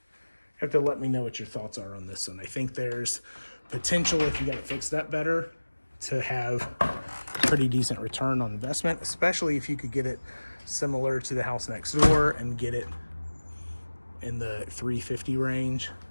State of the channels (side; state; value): both; inverted; correlation -1.00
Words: have to let me know what your thoughts are on this one. I think there's potential, if you got it fixed up better, to have pretty decent return on investment, especially if you could get it similar to the house next door and get it in the 350 range.